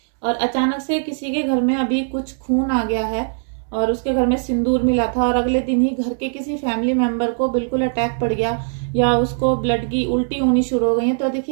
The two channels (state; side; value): silent; left; digital silence